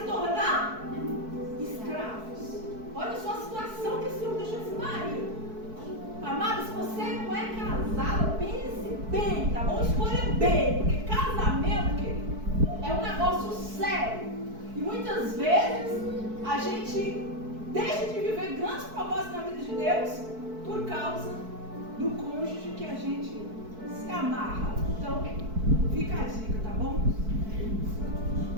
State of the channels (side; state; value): left; late; 4.6 ms